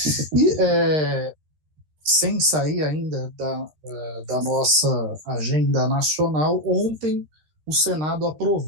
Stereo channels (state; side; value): late; left; 13 ms